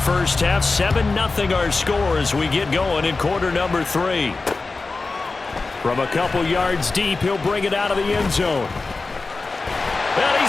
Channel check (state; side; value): quieter; right; 3.7 dB